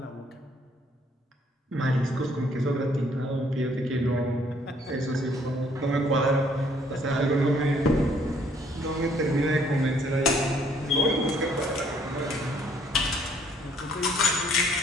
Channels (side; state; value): both; normal; correlation 0.64